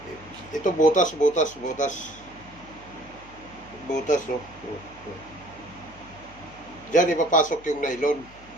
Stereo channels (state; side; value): noise; left; hum, 21 dB below the sound